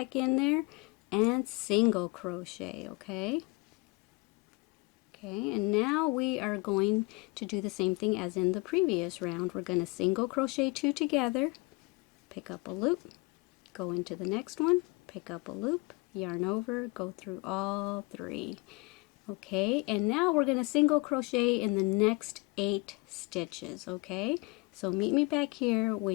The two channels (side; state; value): right; quieter; 27.1 dB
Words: in there and single crochet. Okay, and now we are going to do the same thing as in the previous round. We're going to single crochet 2 together, pick up a loop, go into the next one, pick up a loop, yarn over, go through all 3. Okay, and now we're going to single crochet in the next 8 stitches. Okay, so meet me back here